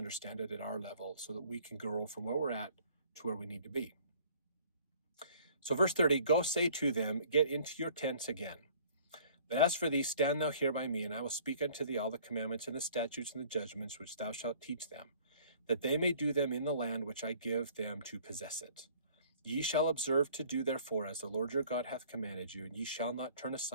it at our level so that we can grow from where we're at to where we need to be. So verse 30, go say to them, get into your tents again. But as for thee, stand thou here by me, and I will speak unto thee all the commandments and the statutes and the judgments which thou shalt teach them, that they may do them in the land which I give them to possess it. Ye shall observe to do therefore as the Lord your God hath commanded you, and ye shall not turn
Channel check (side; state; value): both; inverted; correlation -0.54